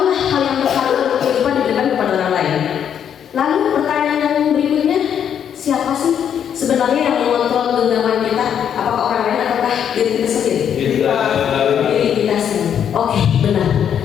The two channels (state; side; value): quieter; right; 8.7 dB